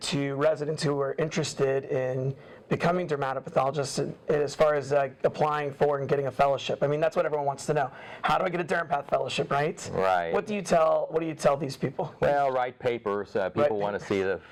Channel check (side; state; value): both; identical; correlation 1.00